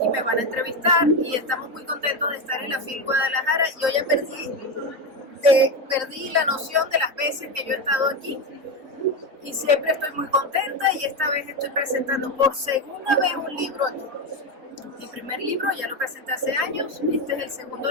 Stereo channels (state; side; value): late; left; 3.9 ms